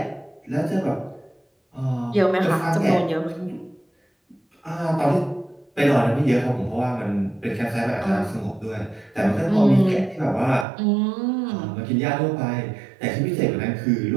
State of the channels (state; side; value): drops out; left; at 10.7 s